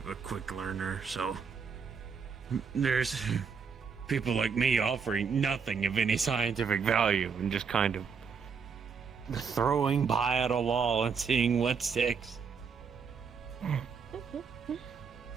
quick learner, so... There's people like me offering nothing of any scientific value and just kind of throwing pie at a wall and seeing what sticks.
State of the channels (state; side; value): quieter; left; 5.9 dB